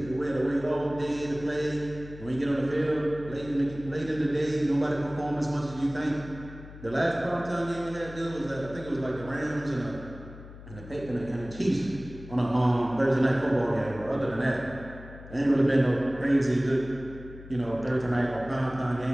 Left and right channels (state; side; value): noise; left; hum, 16 dB below the sound